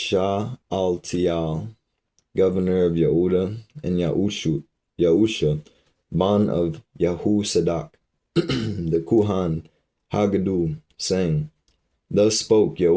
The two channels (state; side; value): identical; both; correlation 1.00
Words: governor of Yehudah, and Yahusha, ban of Yahusadak, the Kuhan Haggadah, saying, Thus spoke